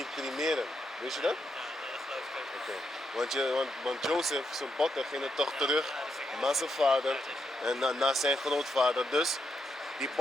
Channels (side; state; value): both; normal; correlation 0.81